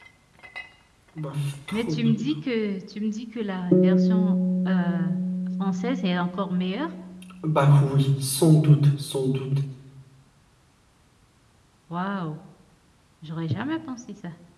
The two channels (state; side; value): identical; both; correlation 1.00